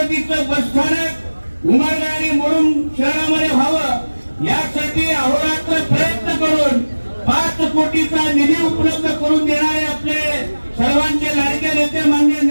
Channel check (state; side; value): inverted; both; correlation -1.00